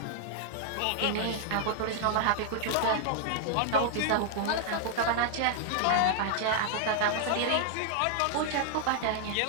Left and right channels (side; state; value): both; different; correlation 0.00